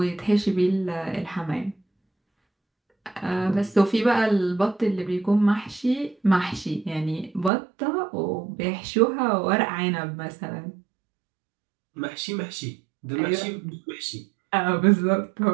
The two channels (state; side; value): drops out; left; at 7.5 s